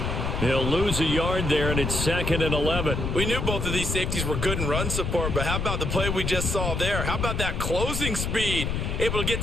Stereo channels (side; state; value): left; noise; rumble, 2 dB below the sound